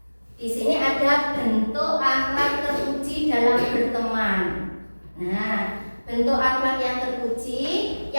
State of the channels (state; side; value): inverted; both; correlation -1.00